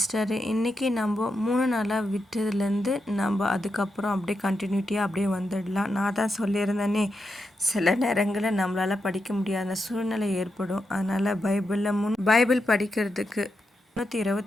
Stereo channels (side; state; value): both; normal; correlation 0.86